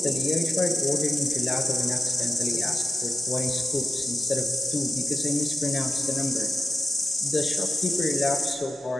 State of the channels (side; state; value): both; normal; correlation 0.90